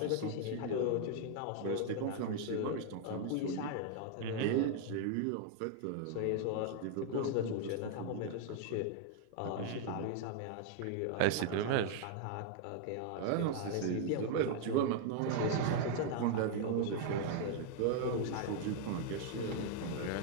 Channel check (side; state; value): both; different; correlation 0.00